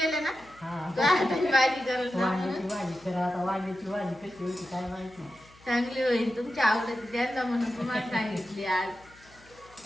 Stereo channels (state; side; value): noise; left; hum, 26 dB below the sound